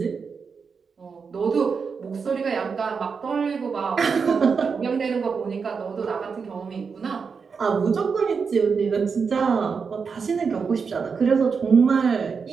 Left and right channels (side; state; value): left; quieter; 5.6 dB